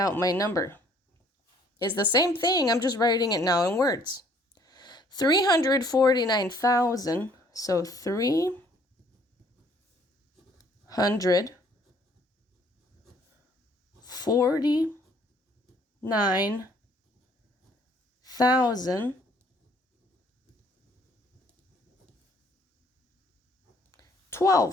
my number. It's the same thing, I'm just writing it now in words. 349,000, so 349,000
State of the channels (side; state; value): both; normal; correlation 0.61